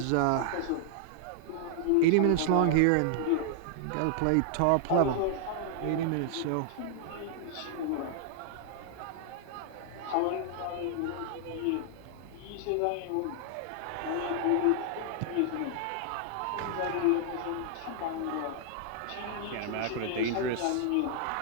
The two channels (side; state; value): both; different; correlation -0.01